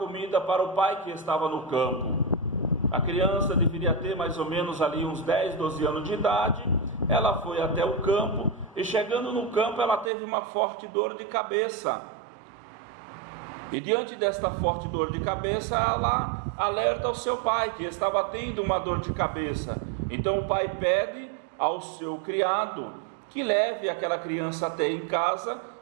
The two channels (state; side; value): drops out; left; at 10.1 s